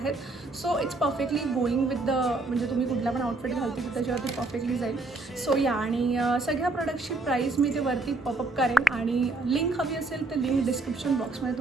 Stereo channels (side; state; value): left; quieter; 3.2 dB